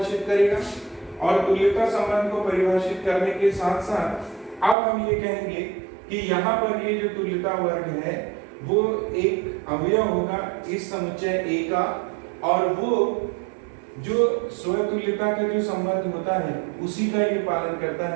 करेगा। और तुल्यता संबंध को परिभाषित करने के साथ साथ अब हम ये कहेंगे कि यहाँ पर ये जो तुल्यता वर्ग है वो एक अवयव होगा इस समुच्चय A का, और वो जो स्वतुल्यता का जो संबंध होता है उसी का ये पालन करता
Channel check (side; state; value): left; drops out; at 4.8 s